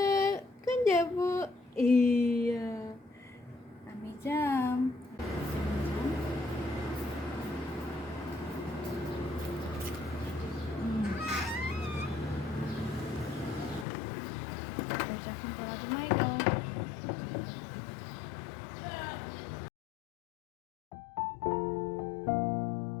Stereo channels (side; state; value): right; drops out; at 13.9 s